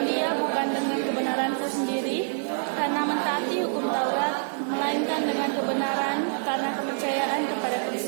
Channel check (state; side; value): silent; left; digital silence